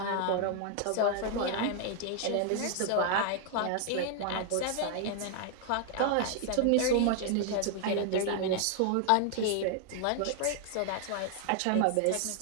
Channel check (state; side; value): different; both; correlation 0.00